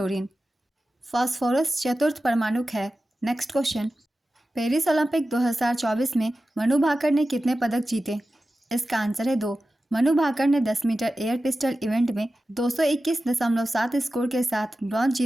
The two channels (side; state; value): both; normal; correlation 0.94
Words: फास्फोरस चतुर्थ परमाणुक है। नेक्स्ट क्वेश्चन, पेरिस ओलंपिक 2024 में मनु भाकर ने कितने पदक जीते? इसका आंसर है 2। मनु भाकर ने 10 मीटर एयर पिस्टल इवेंट में 221.7 स्कोर के साथ ब्रॉन्ज